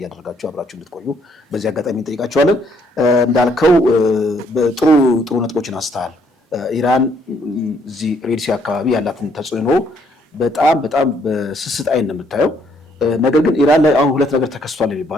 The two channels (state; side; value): normal; both; correlation 0.68